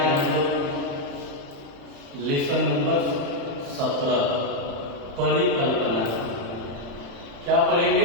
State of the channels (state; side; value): late; left; 35 ms